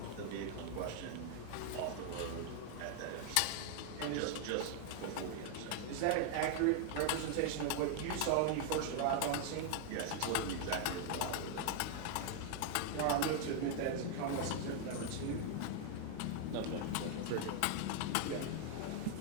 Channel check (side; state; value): both; different; correlation 0.00